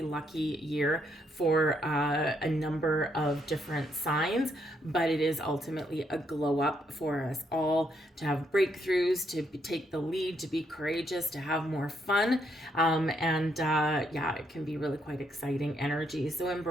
lucky year for a number of different signs, but it is ultimately a glow up for us all to have breakthroughs, to take the lead, to be courageous, to have more fun, it can be really quite exciting energy. So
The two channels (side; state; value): both; normal; correlation 0.75